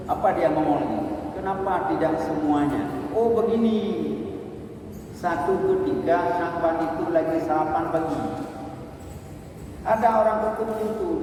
apa dia ngomong lagi? Kenapa tidak semuanya? Oh begini. Satu ketika Syahban itu lagi sarapan pagi. Ada orang ketuk pintu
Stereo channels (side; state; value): both; identical; correlation 1.00